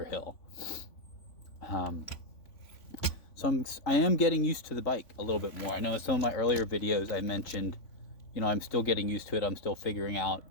hill. So I am getting used to the bike a little bit more. I know in some of my earlier videos I mentioned, I'm still getting used to it. I'm still figuring out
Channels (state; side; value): late; right; 3.5 ms